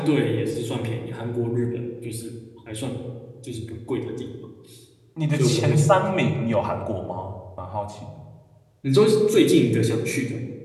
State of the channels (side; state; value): both; identical; correlation 1.00